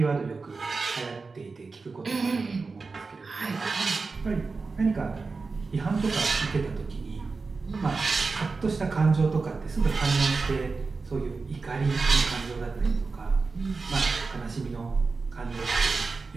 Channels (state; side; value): quieter; left; 4.2 dB